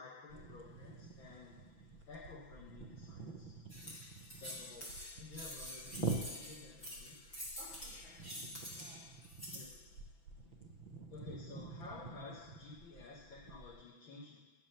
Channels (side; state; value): right; late; 6.0 ms